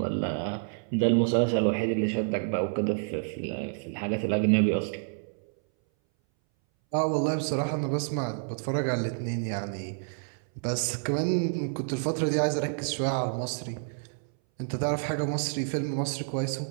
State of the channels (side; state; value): left; silent; 59 dB below the other